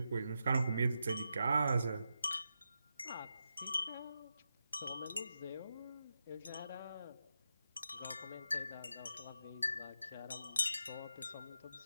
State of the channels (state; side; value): inverted; both; correlation -0.87